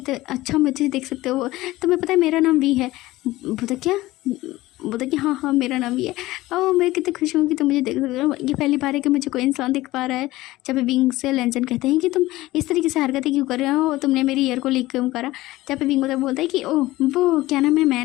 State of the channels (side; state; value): right; quieter; 17.9 dB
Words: मुझे देख सकते हो, तुम्हें पता है मेरा नाम वी है। बोलता क्या बोलता कि हाँ हाँ मेरा नाम ये है। और मैं कितनी खुश हूँ कि तुम मुझे देख सकते हो, ये पहली बार है कि मुझे कोई इंसान देख पा रहा है। जब विंग से लेंसन कहते हैं कि तुम इस तरीके से हरकतें क्यों कर रहे हो, तुमने मेरी ईयर को लीक क्यों करा। जब विंग बोलता है कि ओह वो क्या नाम है, मैं